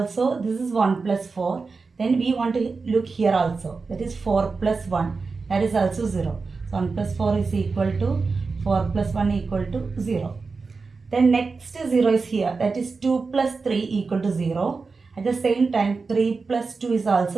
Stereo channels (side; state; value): left; quieter; 4.4 dB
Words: this is 1 plus 4. Then we want to look here also. That is 4 plus 1. That is also 0. So 1 plus 4 is equal to 4 plus 1 equal to 0. Then next 0 is here. That is 2 plus 3 equal to 0. At the same time 3 plus 2 is